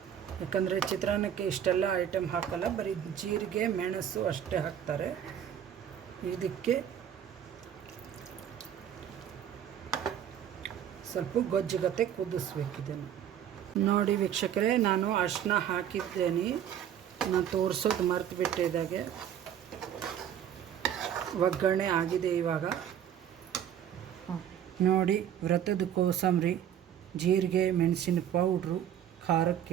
ಯಾಕಂದರೆ ಚಿತ್ರಾನ್ನಕ್ಕೆ ಇಷ್ಟೆಲ್ಲ ಐಟಮ್ ಹಾಕಲ್ಲ, ಬರೀ ಜೀರಿಗೆ ಮೆಣಸು ಅಷ್ಟೇ ಹಾಕ್ತಾರೆ. ಇದಕ್ಕೆ ಸ್ವಲ್ಪ ಗೊಜ್ಜುಗತೆ ಕುದಿಸ್ಬೇಕಿದನ್ನು. ನೋಡಿ ವೀಕ್ಷಕರೇ, ನಾನು ಅರಿಶಿನ ಹಾಕಿದ್ದೇನೆ, ನಾನು ತೋರಿಸೋದು ಮರ್ತು ಬಿಟ್ಟಿದ್ದಾಗೆ. ಒಗ್ಗರಣೆ ಆಗಿದೆ ಇವಾಗ. ನೋಡಿ, ವ್ರತದ ಕೋಸಂಬರಿ, ಜೀರಿಗೆ ಮೆಣಸಿನ ಪೌಡ್ರು,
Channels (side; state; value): left; quieter; 9.6 dB